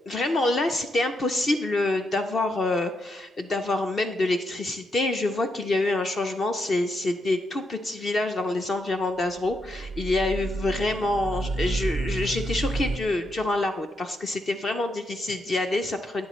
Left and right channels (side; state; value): both; normal; correlation 0.81